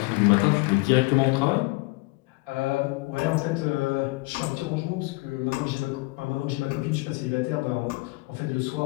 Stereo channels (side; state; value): right; quieter; 24.5 dB